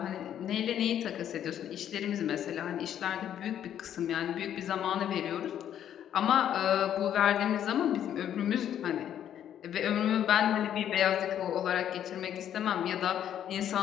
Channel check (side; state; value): right; quieter; 10.2 dB